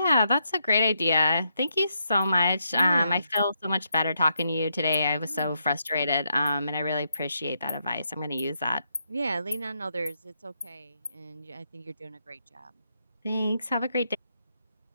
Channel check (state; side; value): inverted; both; correlation -0.79